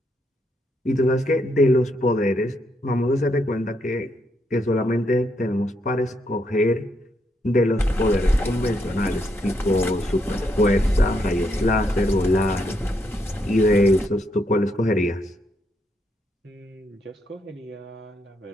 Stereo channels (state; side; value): normal; both; correlation 0.77